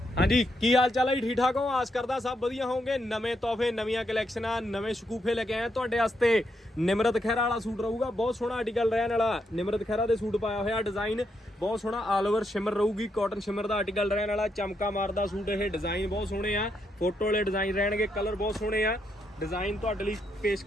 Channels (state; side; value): normal; both; correlation 0.79